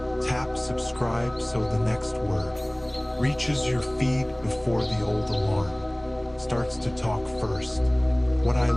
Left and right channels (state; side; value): noise; left; hum, 24 dB below the sound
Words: Tap subscribe so the next word reaches your feed before the old alarm starts to talk first. What I